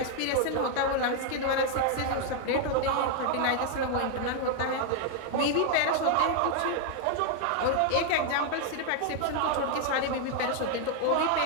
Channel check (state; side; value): different; both; correlation 0.00